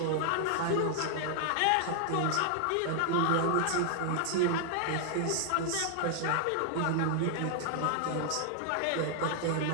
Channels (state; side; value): different; both; correlation -0.01